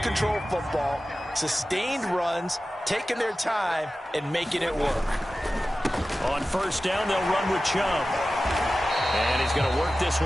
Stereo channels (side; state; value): both; normal; correlation 0.95